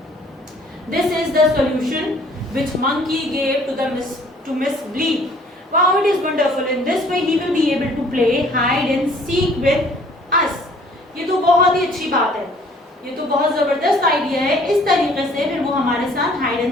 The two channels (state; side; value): normal; both; correlation 0.56